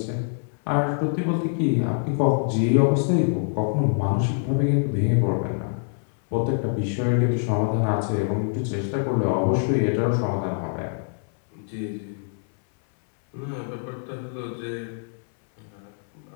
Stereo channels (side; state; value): right; silent; 62 dB below the other